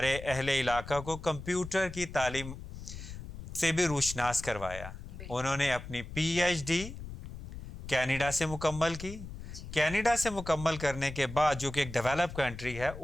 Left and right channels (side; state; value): left; noise; rumble, 11 dB below the sound